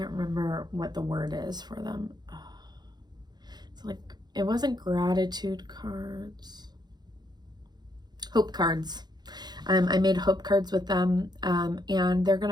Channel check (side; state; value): left; late; 0.20 ms